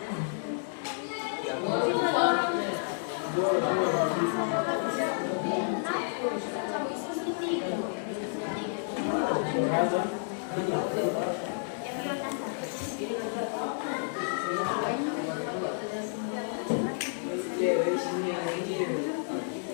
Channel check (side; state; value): right; silent; 57 dB below the other